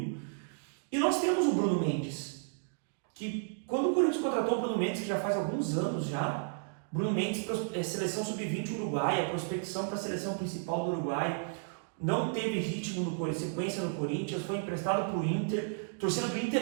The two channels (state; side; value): silent; left; digital silence